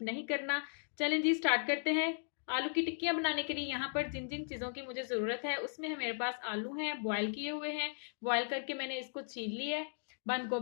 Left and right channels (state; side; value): silent; right; digital silence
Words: नहीं करना। चलें जी, स्टार्ट करते हैं। आलू की टिक्कियाँ बनाने के लिए यहाँ पर जिन जिन चीज़ों की मुझे ज़रूरत है उसमें है मेरे पास आलू हैं, बॉयल किए हुए हैं। बॉयल करके मैंने इसको छील लिया है। बंद